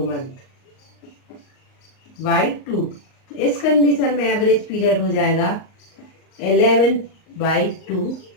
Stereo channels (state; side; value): late; right; 38 ms